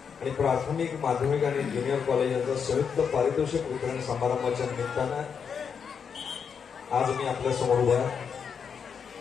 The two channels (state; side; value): quieter; right; 6.7 dB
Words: आणि प्राथमिक, माध्यमिक आणि ज्युनियर कॉलेज यांचा संयुक्त पारितोषिक वितरण समारंभाच्या निमित्तानं आज मी आपल्या समोर उभा आहे.